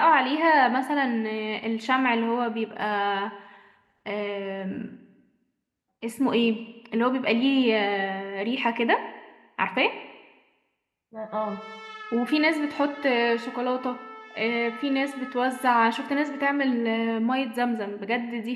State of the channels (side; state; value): both; identical; correlation 1.00